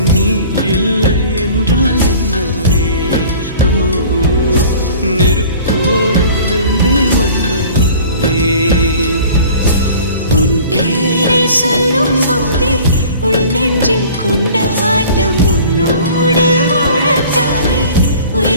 நீ இல்லை என்றால் என்னவே? ஓ நெருப்போடு வெந்தே மண்ணாவே. உன் பேரை சொல்லும் போதே உன் நெஞ்சில் கொண்டாட்டம். உன்னோடு வாழத்தானே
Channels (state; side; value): inverted; both; correlation -0.45